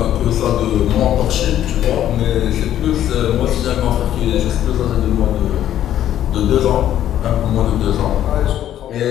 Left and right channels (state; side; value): quieter; right; 11.5 dB